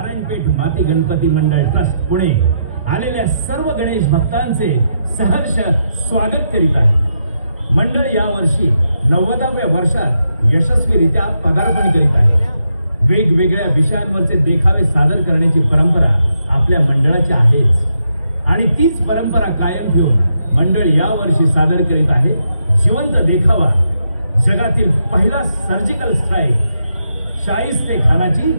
माती गणपती मंडळ ट्रस्ट पुणे आलेल्या सर्व गणेश भक्तांचे सहर्ष स्वागत करीत आहे. मंडळ यावर्षी 90व्या वर्षात यशस्वीरित्या पदार्पण करीत आहे. वेगवेगळ्या विषयांवरचे देखावे सादर करण्याची परंपरा आपल्या मंडळाची आहेच आणि तीच परंपरा कायम ठेवून मंडळ यावर्षी सादर करीत आहे जिवंत देखावा, जगातील पहिला सर्जिकल स्ट्राईक, शाहिस्ते खानाची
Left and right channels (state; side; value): inverted; both; correlation -0.81